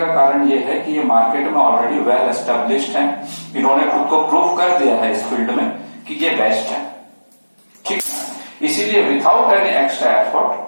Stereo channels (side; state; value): both; inverted; correlation -1.00